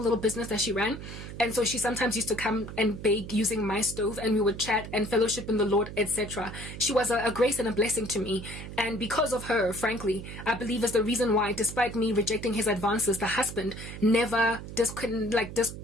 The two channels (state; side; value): noise; right; hum, 10 dB below the sound